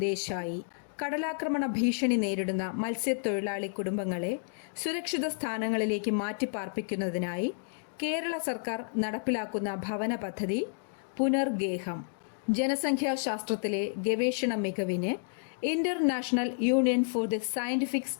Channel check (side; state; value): right; silent; digital silence